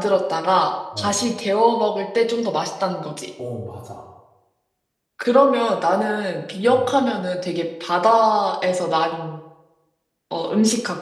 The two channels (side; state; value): both; identical; correlation 1.00